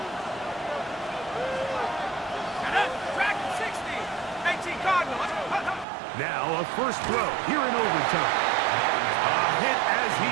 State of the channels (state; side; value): drops out; left; at 5.9 s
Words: Now a first throw here in overtime. A hit as he